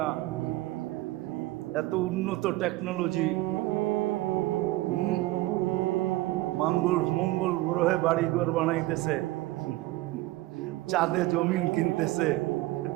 না। এত উন্নত টেকনোলজি, মঙ্গল গ্রহে বাড়িঘর বানাইতেছে, চাঁদে জমিন কিনতেছে,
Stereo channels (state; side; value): quieter; left; 18.4 dB